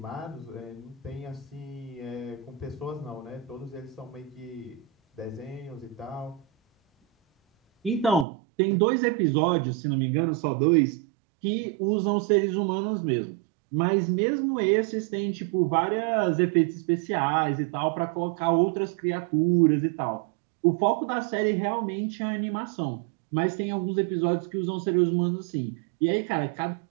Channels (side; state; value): left; drops out; at 8.2 s